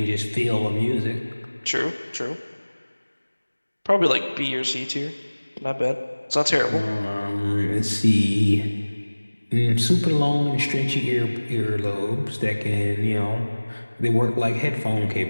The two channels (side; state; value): both; inverted; correlation -1.00